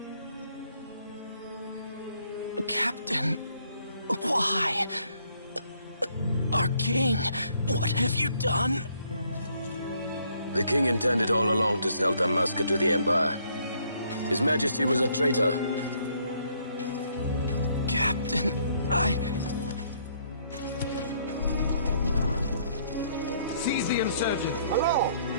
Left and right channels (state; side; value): inverted; both; correlation -0.67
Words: Captain, why? Our king, what have you done? The king intended all along to sell Dalmasca to the Empire. His Majesty was a traitor. Captain, Seize the insurgent. Hello!